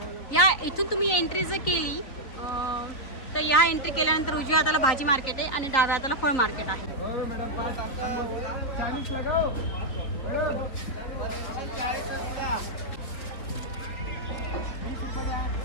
या इथून तुम्ही एंट्री जर केली तर या एंट्री केल्यानंतर उजव्या हाताला भाजी मार्केट आहे आणि डाव्या हाताला फळ मार्केट आहे. हो मॅडम 40 लगाओ.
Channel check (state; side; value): late; right; 3.9 ms